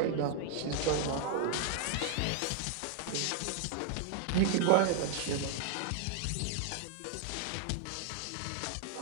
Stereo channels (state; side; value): different; both; correlation 0.00